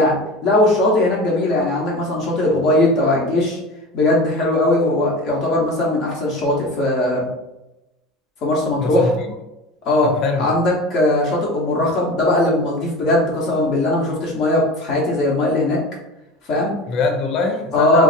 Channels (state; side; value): normal; both; correlation 0.33